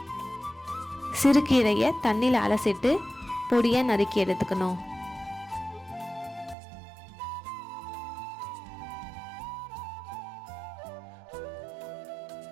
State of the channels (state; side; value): drops out; left; at 6.6 s